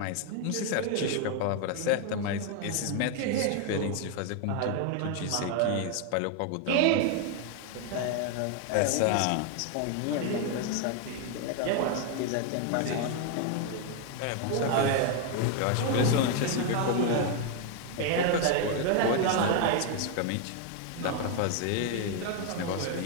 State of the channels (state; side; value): different; both; correlation 0.01